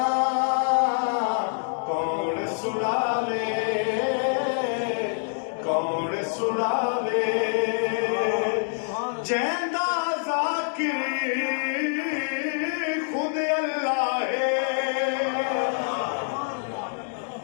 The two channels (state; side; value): silent; right; digital silence